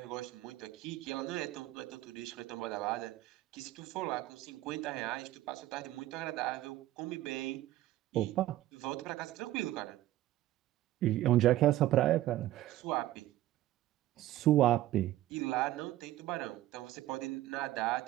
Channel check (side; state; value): left; quieter; 14.9 dB